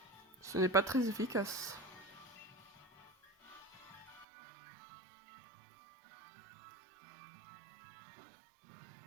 Ce n'est pas très efficace.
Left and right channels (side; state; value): left; drops out; at 4.2 s